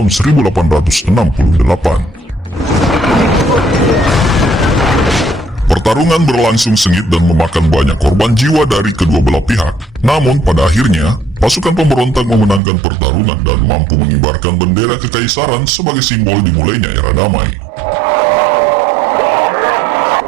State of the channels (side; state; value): left; drops out; at 12.6 s